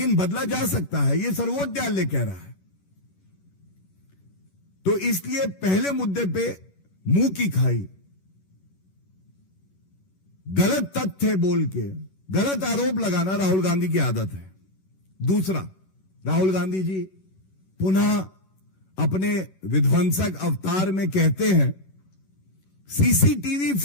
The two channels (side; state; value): right; late; 11 ms